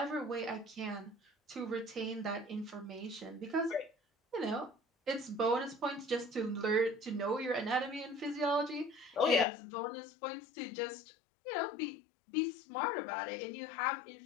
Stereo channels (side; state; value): right; drops out; at 9.5 s